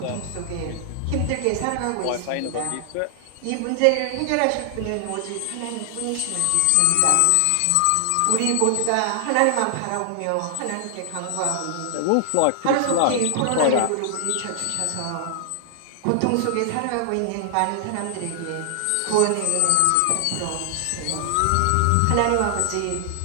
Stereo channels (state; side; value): different; both; correlation 0.00